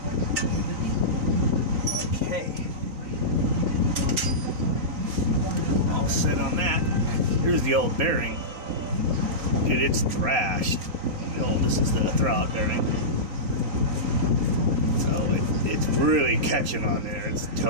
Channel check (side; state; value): left; late; 3.9 ms